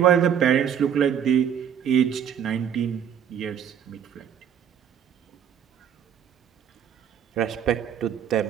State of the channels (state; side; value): quieter; left; 8.7 dB